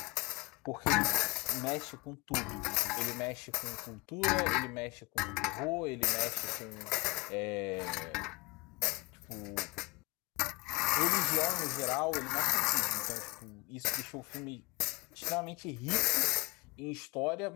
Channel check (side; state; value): right; quieter; 24.7 dB